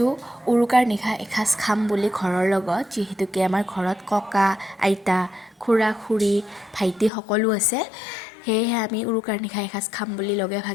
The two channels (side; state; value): right; drops out; at 7.1 s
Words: উৰুকাৰ নিশা এসাঁজ খাম বুলি ঘৰৰ লগত, যিহেতুকে আমাৰ ঘৰত ককা, আইতা, খুৰা, খুৰী, ভাইটি সকলো আছে। সেয়েহে আমি উৰুকাৰ নিশা এসাঁজ খাম বুলি লগে